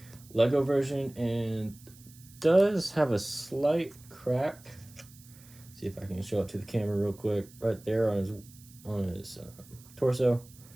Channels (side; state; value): right; noise; hiss, 23 dB below the sound